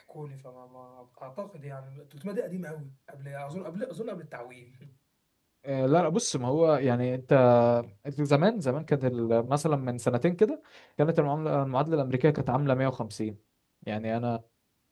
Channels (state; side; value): identical; both; correlation 1.00